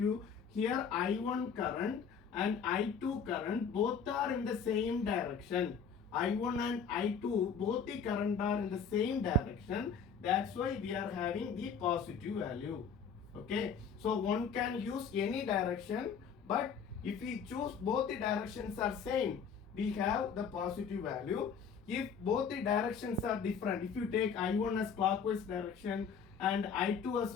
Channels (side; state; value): right; quieter; 6.3 dB